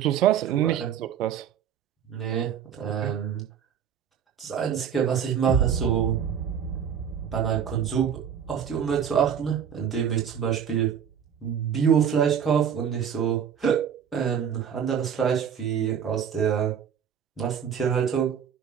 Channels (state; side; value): quieter; left; 8.2 dB